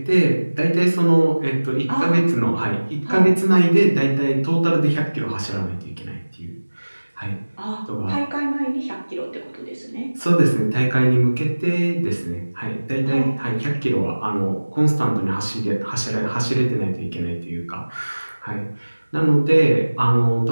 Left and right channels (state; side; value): inverted; both; correlation -1.00